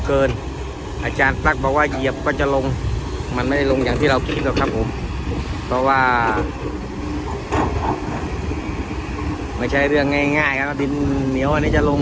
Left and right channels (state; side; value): identical; both; correlation 1.00